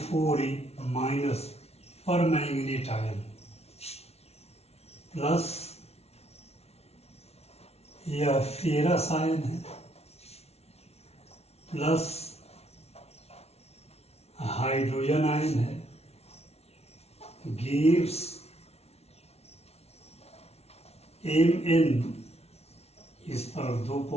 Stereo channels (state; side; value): late; right; 0.31 ms